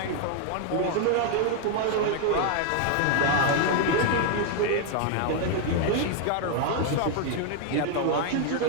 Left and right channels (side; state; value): both; different; correlation 0.00